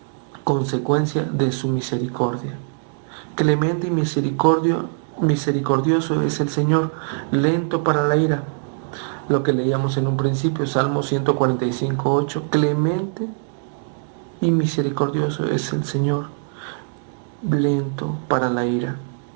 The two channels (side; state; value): left; silent; digital silence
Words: consecuencia de su misericordia. Clemente y misericordioso es el Señor, lento para la ira. Lo que leíamos en un principio, Salmo 145:8. Clemente y misericordioso es el Señor, lento para la ira.